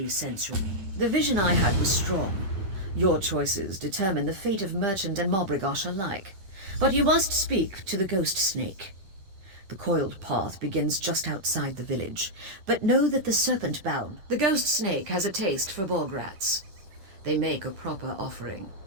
sense your... The vision I had was strong. Your choices determine the fate of Merchant and Mabragash alike. But you must speak to the Ghost Snake. The coiled path begins just outside the village, but know that the Serpent-bound... The Ghost Snake has a taste for bog rats. They make a proper offering.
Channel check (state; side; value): late; left; 10 ms